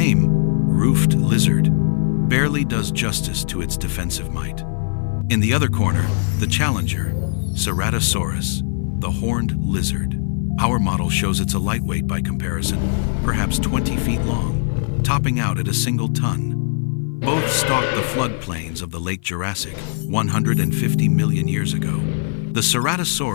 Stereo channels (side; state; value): right; silent; 55 dB below the other